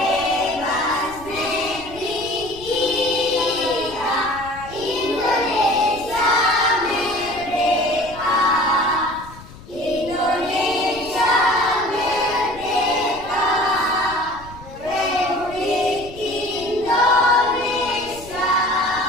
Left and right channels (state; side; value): noise; left; rumble, 18 dB below the sound